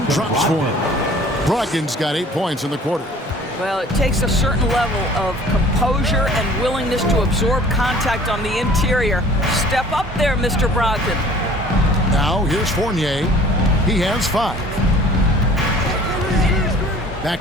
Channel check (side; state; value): both; normal; correlation 0.50